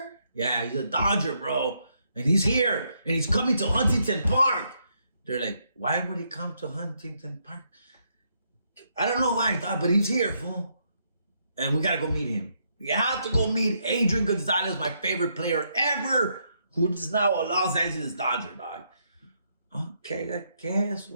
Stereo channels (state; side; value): inverted; both; correlation -0.76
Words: Yeah, he's a Dodger, bro. And he's here, and he's coming to Huntington Park. They're like, why would he come to Huntington Park? I don't know why, but he's here, fool. And we gotta go meet him. We have to go meet Adrian Gonzalez, my favorite player ever, who is now a Los Angeles Dodger, dog. Okay, I guess,